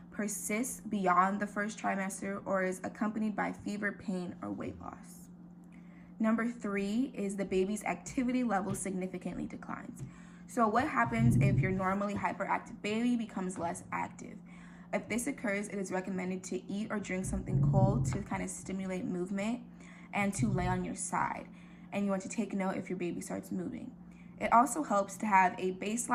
persists beyond the first trimester, or is accompanied by fever, pain, or weight loss. Number 3 is the baby's activity level significantly declines. So what happens if your normally hyperactive baby becomes less active? If this occurs, it is recommended to eat or drink something cold to kind of stimulate movement and to lay on your side. And you want to take note if your baby starts moving. It also helps to have a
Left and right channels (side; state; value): both; identical; correlation 1.00